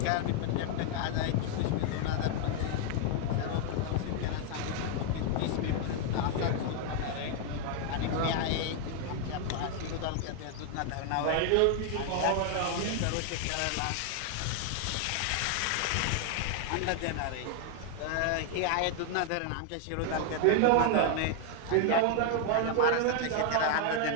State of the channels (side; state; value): both; different; correlation 0.00